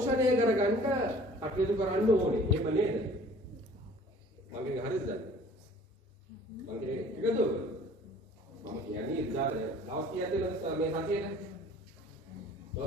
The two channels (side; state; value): both; normal; correlation 0.50